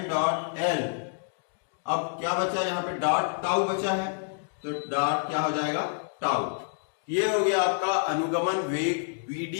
डॉट L। अब क्या बचा यहाँ पे, डॉट टाउ बचा है, तो डॉट क्या हो जाएगा, टाउ। ये हो गया आपका अनुगमन वेग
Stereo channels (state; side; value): silent; right; digital silence